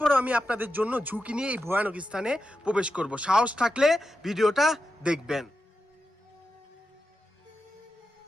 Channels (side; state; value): both; normal; correlation 0.89